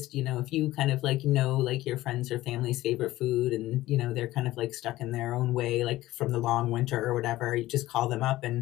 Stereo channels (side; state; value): right; quieter; 16.4 dB